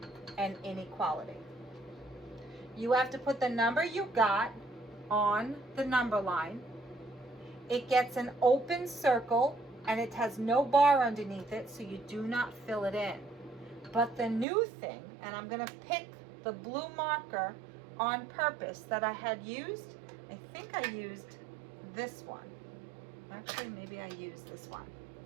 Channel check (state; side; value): drops out; left; at 14.5 s